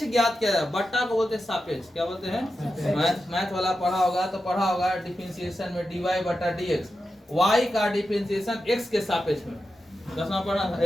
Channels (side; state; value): both; normal; correlation 0.90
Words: ज्ञात किया जाए। बट्टा को बोलते हैं सापेक्ष। क्या बोलते हैं, मैथ वाला पढ़ा होगा डिफरेंशिएशन में dy बटा dx, y का डिफरेंशिएशन x के सापेक्ष में। 10वां पढ़ा था,